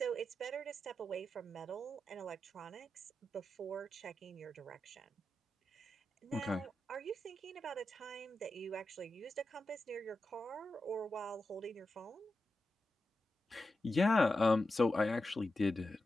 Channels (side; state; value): both; normal; correlation 0.90